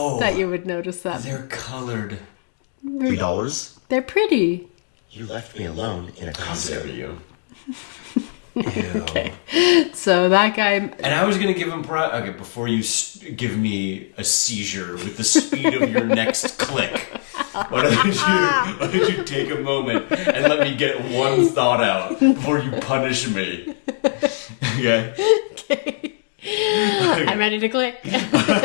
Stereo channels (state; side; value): silent; right; digital silence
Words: That you would notice that. They're colored. $3. They're pretty. You left me alone in a Costco. You. Okay, so that guy... And I was gonna give him okay, before you give me a seizure with the speed of your next click, why don't you take a moment and let me get one thought out before you punish me? Okay? Okay. I'm ready to click. You